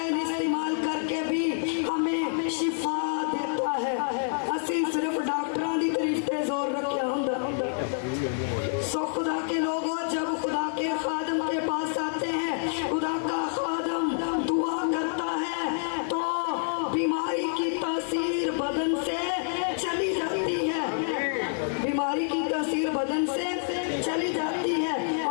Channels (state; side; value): silent; right; 60 dB below the other